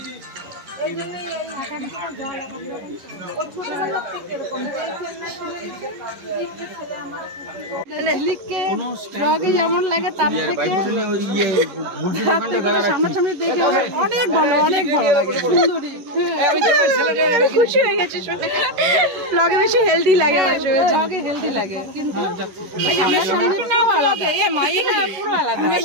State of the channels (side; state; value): left; late; 11 ms